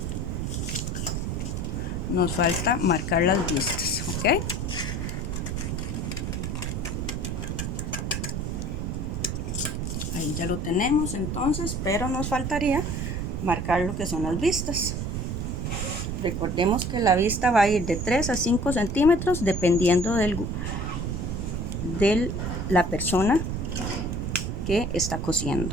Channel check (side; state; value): right; noise; rumble, 2 dB below the sound